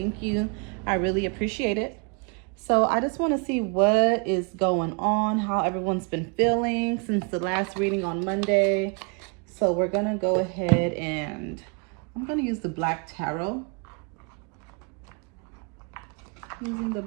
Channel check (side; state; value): left; quieter; 34.9 dB